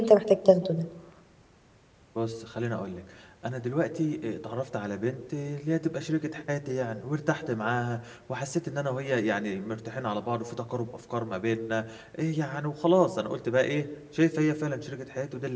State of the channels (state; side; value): identical; both; correlation 1.00